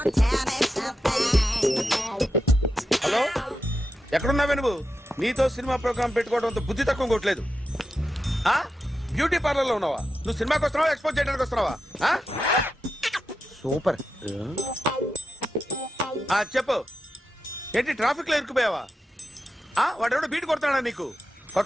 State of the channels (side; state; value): both; normal; correlation 0.88